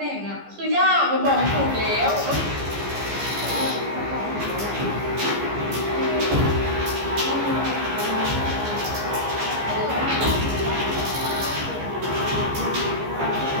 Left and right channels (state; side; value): late; left; 15 ms